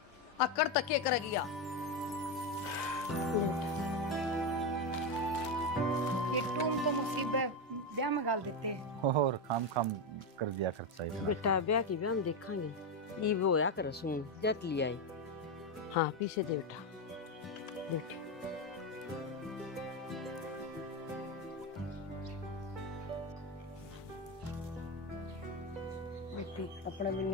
अकड़ तक के करेगी या ये टूम तो मुसीबत ब्याह में गाल देते हैं और खाम कर दिया खर्चा इतना। बेटा ब्याह की ब्याह हम देखेंगे, ये वो या कर सुन जट लिया है। हाँ पीछे दे बेटा, बेटी अपने भी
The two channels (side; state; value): both; normal; correlation 0.10